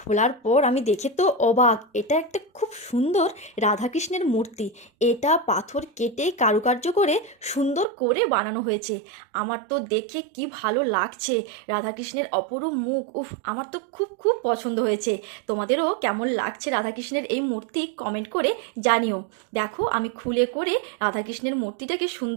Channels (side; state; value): left; drops out; at 7.9 s